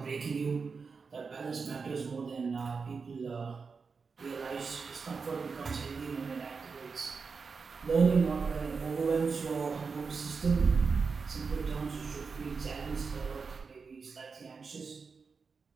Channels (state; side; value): quieter; left; 5.0 dB